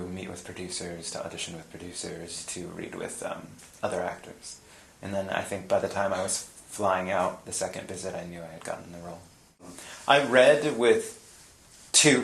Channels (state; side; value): identical; both; correlation 1.00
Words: meet with producers, to audition with producers, to read with other actors. And then I think by the time I was flying out the second visit, I knew I had gotten the role. I read with